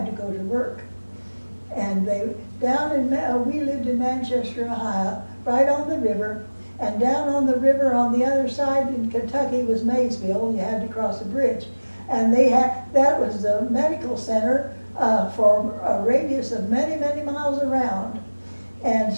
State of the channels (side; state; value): both; inverted; correlation -1.00